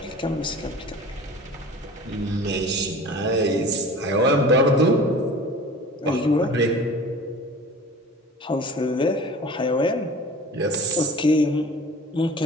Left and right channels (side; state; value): both; normal; correlation 0.41